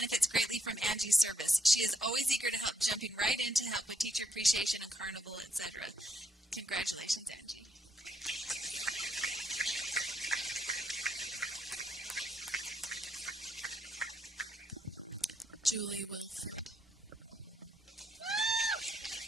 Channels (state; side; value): normal; both; correlation 0.74